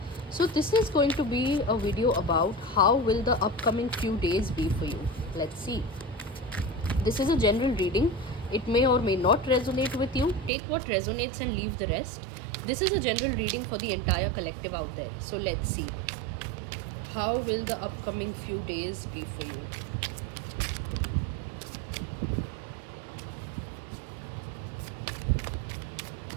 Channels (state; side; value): drops out; left; at 10.5 s